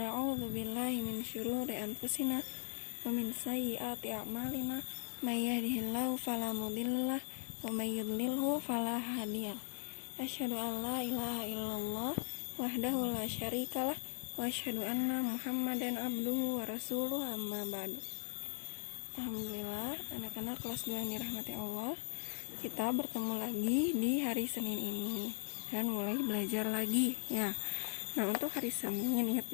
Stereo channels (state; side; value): silent; right; digital silence